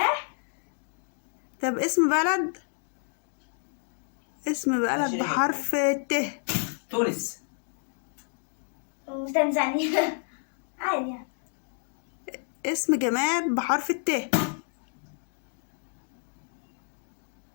طب اسم بلد. اسم بلد بحرف الت. تونس. وتنزانيا. عادي يعني. اسم جماد بحرف الت.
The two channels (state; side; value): silent; right; 58 dB below the other